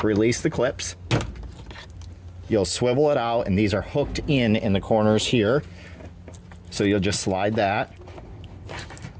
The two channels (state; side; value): identical; both; correlation 1.00